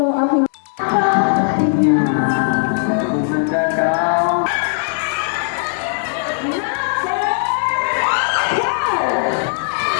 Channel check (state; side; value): silent; right; digital silence